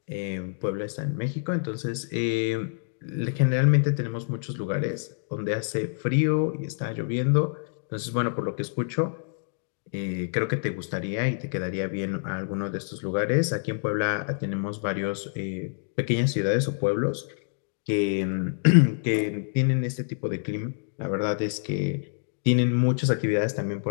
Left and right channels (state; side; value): silent; right; digital silence